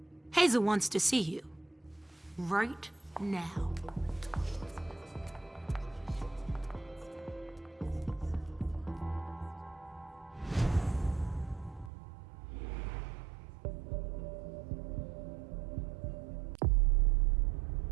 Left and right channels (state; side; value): drops out; left; at 11.9 s